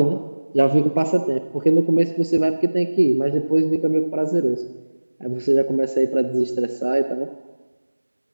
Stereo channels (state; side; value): inverted; both; correlation -1.00